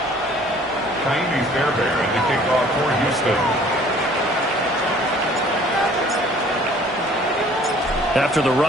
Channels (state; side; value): normal; both; correlation 0.54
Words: Kaimi Fairbairn to kick off for Houston. After the